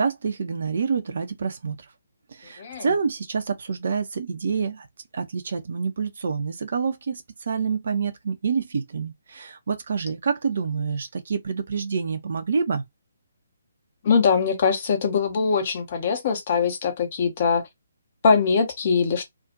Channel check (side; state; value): both; inverted; correlation -0.70